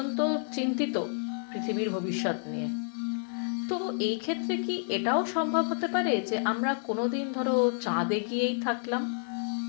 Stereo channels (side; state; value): right; silent; 58 dB below the other